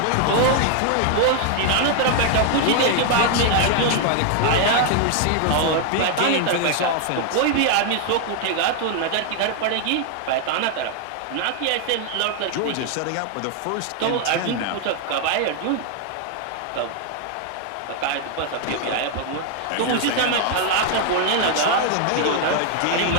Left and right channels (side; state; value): both; different; correlation 0.00